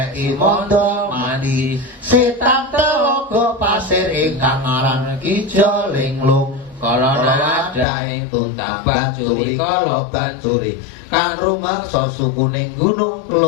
mondo mandi setan telogo pasir ingkang aran Kijo Linglung kala wadah ing Tuntang Bancuri kala Bancuri kang rumeksa sukuning Gunung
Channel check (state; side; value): drops out; right; at 7.9 s